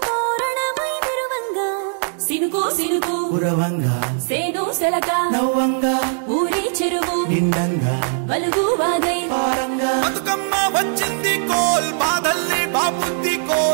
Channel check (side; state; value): left; silent; digital silence